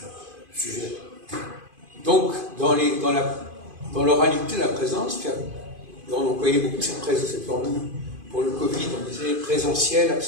Sujet. Donc, dans l'oralité, la présence, on employait beaucoup cette formule. Pour le Covid, on disait présentiel,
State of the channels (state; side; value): late; left; 2.5 ms